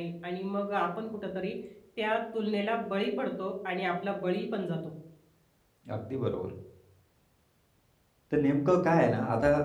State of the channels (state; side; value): identical; both; correlation 1.00